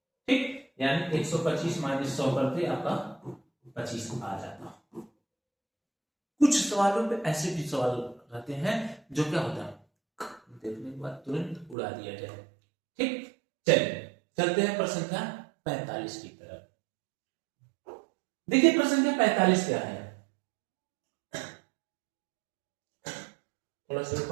ठीक, यानी 125 माइनस 100 करते आपका 25 आ जाता। कुछ सवालों पे ऐसे भी सवाल रहते हैं जो क्या होता है, देखने के बाद तुरंत उड़ा दिया जाए। ठीक, चलिए चलते हैं प्रश्न संख्या 45 की तरफ। देखिए प्रश्न संख्या 45 क्या है, थोड़ा सा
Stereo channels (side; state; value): left; drops out; at 11.8 s